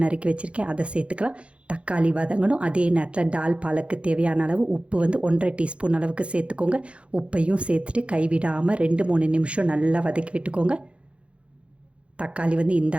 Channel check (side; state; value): left; late; 0.060 ms